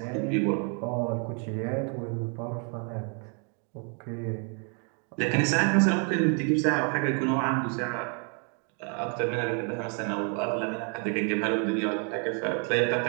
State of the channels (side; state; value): left; quieter; 39.3 dB